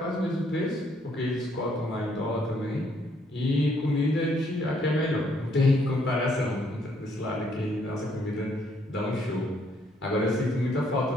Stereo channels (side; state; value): both; normal; correlation 0.69